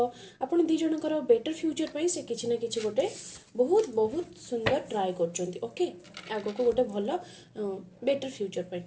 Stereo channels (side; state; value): both; identical; correlation 1.00